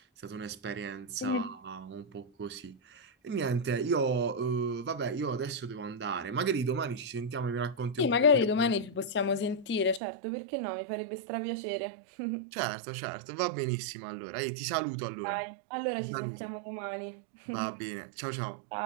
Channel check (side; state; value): left; drops out; at 10.0 s